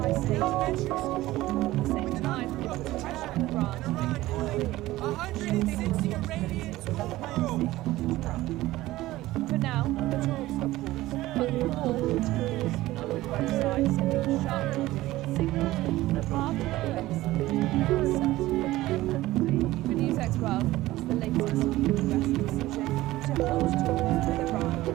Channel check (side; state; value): left; quieter; 17.0 dB